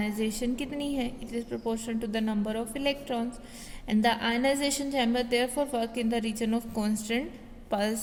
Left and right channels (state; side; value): identical; both; correlation 1.00